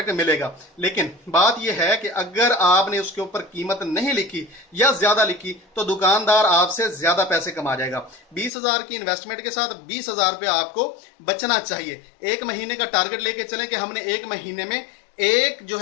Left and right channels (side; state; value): right; drops out; at 8.5 s